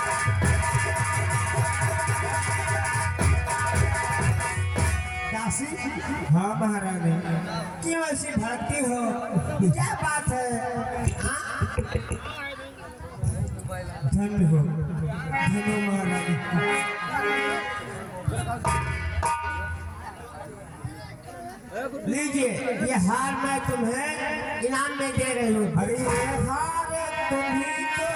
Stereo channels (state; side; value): identical; both; correlation 1.00